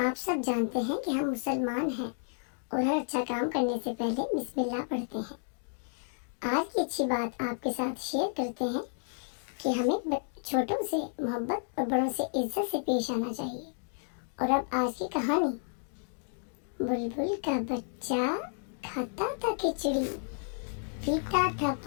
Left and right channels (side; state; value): right; silent; digital silence